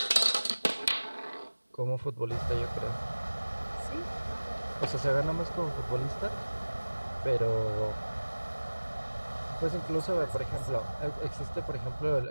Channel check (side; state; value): both; inverted; correlation -1.00